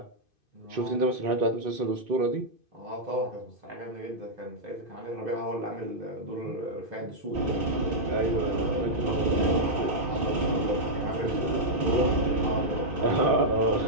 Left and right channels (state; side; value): late; left; 2.5 ms